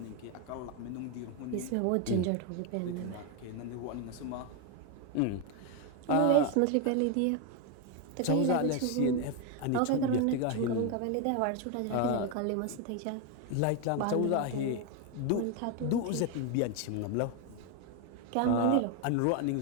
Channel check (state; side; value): different; both; correlation 0.02